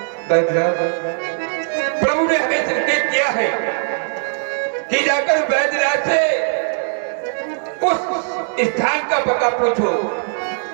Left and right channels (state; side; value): silent; left; digital silence